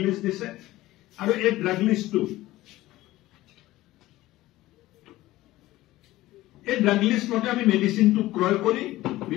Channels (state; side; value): quieter; right; 16.9 dB